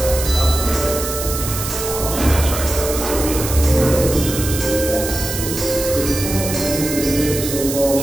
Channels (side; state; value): right; noise; hiss, 6 dB below the sound